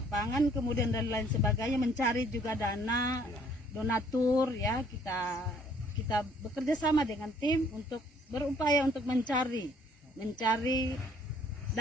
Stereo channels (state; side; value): normal; both; correlation 0.61